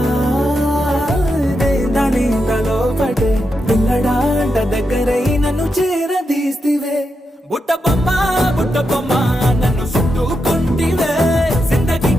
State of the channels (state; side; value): normal; both; correlation 0.85